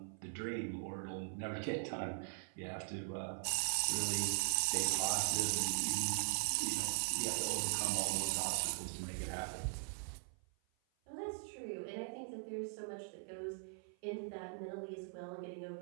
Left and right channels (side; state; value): left; silent; 51 dB below the other